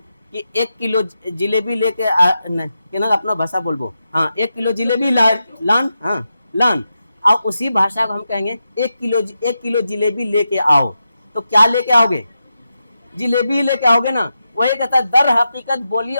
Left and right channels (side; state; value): both; inverted; correlation -0.89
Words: कि 1 किलो जिलेबी लेके अपना भाषा बोलबो, हाँ 1 किलो जिलेबी लान, हाँ लान, और उसी भाषा को हम कहेंगे 1 किलो जिलेबी लेके आओ, तो क्या लेके आओगे? जिलेबी लेके आओगे ना। वही कहता है दर हकीकत बोली